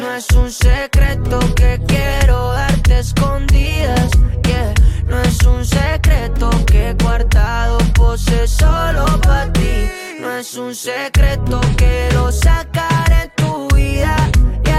No es un secreto que quiero darte escondidas, yeah. No es un secreto que he guardado pose solo pa' ti. No es un secreto que lo sacaré en tu vida,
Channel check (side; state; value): both; identical; correlation 1.00